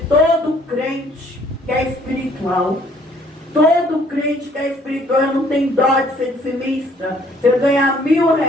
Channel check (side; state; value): both; normal; correlation 0.60